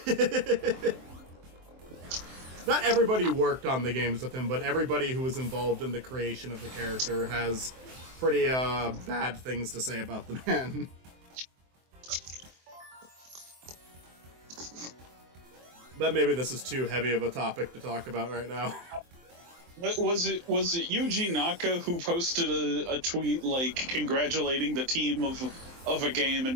Not everybody worked on the games with him, but everybody who was involved in the creation of the character has pretty bad things to say about the man. But maybe this is too heavy of a topic to talk about right now. Was it Yuji Naka who posted a tweet like congratulating the team of a game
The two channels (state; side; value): late; left; 23 ms